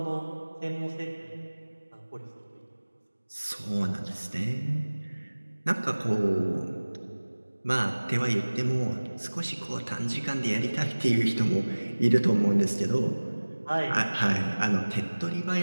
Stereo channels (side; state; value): both; inverted; correlation -1.00